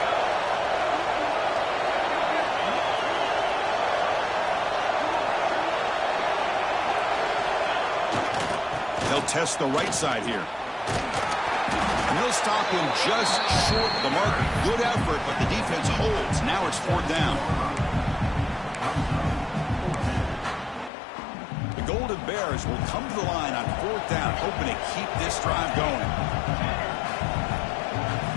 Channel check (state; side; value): drops out; right; at 20.9 s